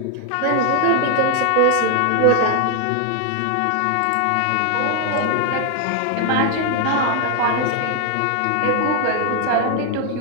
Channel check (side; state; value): both; different; correlation 0.00